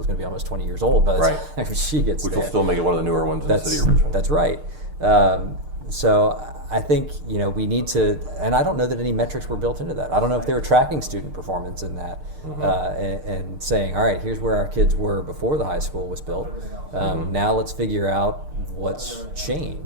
going to be almost 20 years old by the time she gets Which there. will still make it one of the newer ones in the city of Richmond. That's right. So I think, we need to, and I don't know that any metrics were built into that. I don't know if they were tracking student performance in that and saying, all right, here's where our kids were before the high school was built. Now let's figure out what's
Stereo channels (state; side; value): late; left; 6.6 ms